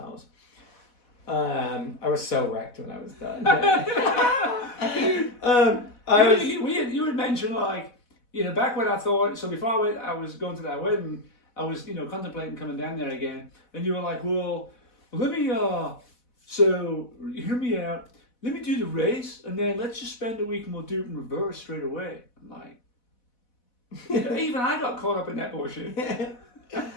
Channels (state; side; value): late; right; 4.1 ms